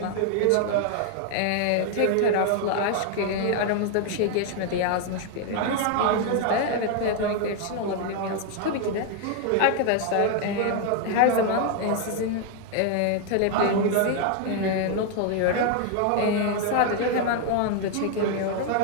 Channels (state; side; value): different; both; correlation 0.00